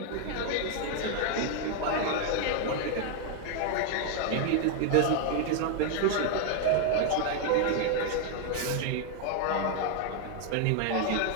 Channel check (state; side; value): different; both; correlation 0.00